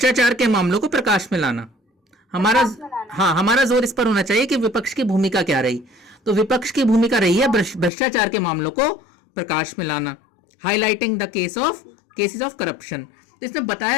के मामलों को प्रकाश में लाना। हमारा हाँ, हमारा जोर इस पर होना चाहिए कि विपक्ष की भूमिका क्या रही। तो विपक्ष की भूमिका रही है भ्रष्टाचार के मामलों को प्रकाश में लाना, highlighting the cases of corruption. तो इसमें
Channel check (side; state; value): right; drops out; at 7.9 s